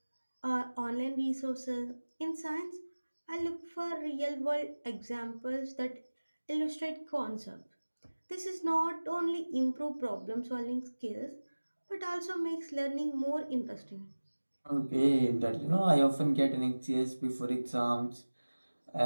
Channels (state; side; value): inverted; both; correlation -1.00